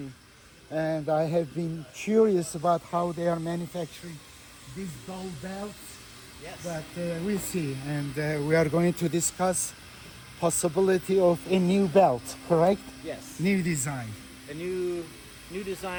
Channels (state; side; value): identical; both; correlation 1.00